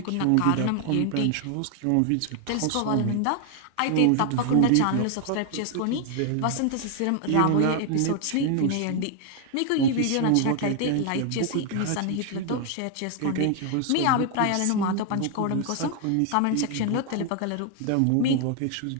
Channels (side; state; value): both; different; correlation 0.00